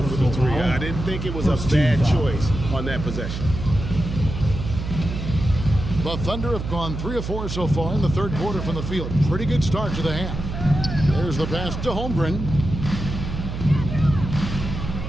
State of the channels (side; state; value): right; noise; hum, 6 dB below the sound